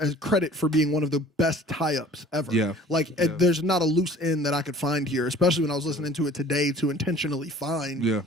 credit for being one of the best tie-ups ever. Yeah, like there's not a loose end that I could find here, especially when I was listening to it today to intentionally find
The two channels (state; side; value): normal; both; correlation 0.49